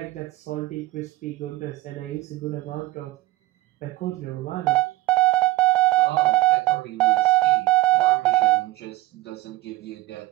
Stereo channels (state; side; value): quieter; left; 18.9 dB